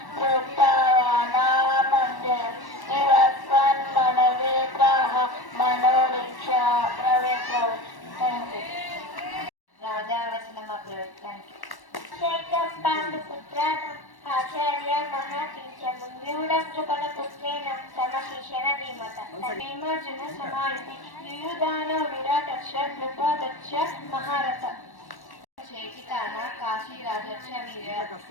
ప్రోక్తవానామందే నివస్వన్ మనవేత్రాః మనోరిక్షా ప్రవేత్రౌ. రాజావచనం అప్రవేత్తానికి పాండుపుత్రానం ఆచార్య మహాతీర్థము వ్యూఢకృపణ పుత్రేణ సమశిషణ ధీమత భీమార్జున సమాయుధి యుయుధాన విరాటక్ష కృపాదక్ష మహారథ చేతికాన కాశీ రాజక్ష వీర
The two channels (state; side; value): late; right; 1.1 ms